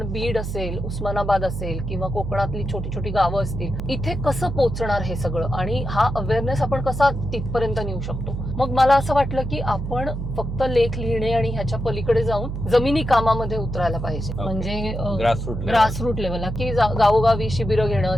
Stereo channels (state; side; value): noise; right; hum, 5 dB below the sound